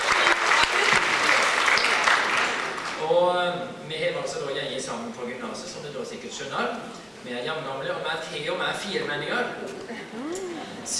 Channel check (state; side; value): identical; both; correlation 1.00